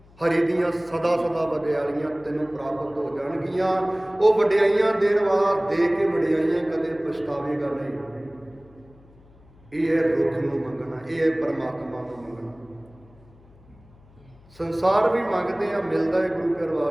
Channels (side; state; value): left; noise; hum, 26 dB below the sound